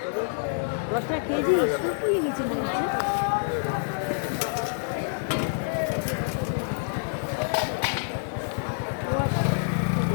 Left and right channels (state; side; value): silent; right; digital silence